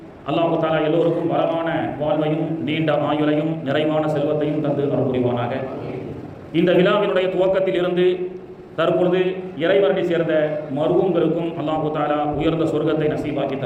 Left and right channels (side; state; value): both; identical; correlation 1.00